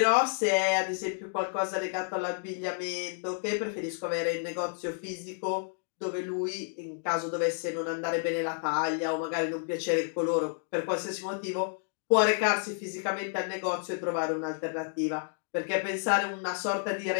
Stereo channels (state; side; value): silent; right; digital silence